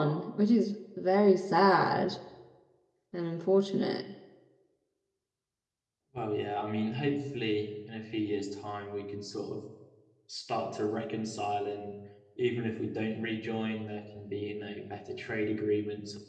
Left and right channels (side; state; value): both; identical; correlation 1.00